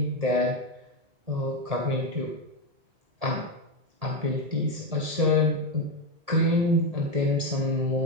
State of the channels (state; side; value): late; left; 1.7 ms